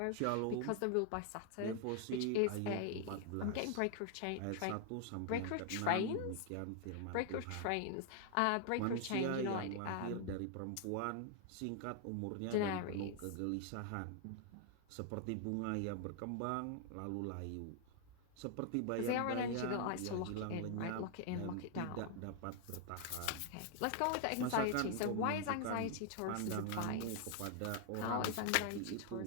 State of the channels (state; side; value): different; both; correlation 0.00